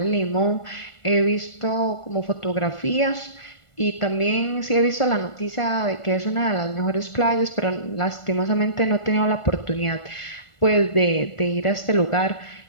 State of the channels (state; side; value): late; right; 1.4 ms